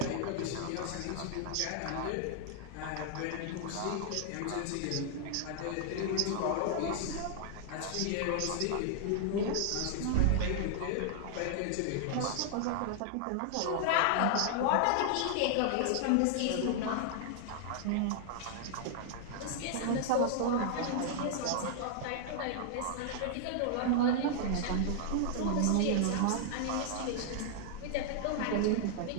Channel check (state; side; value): different; both; correlation -0.01